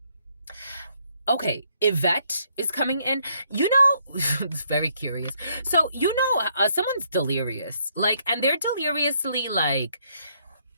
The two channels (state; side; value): inverted; both; correlation -0.71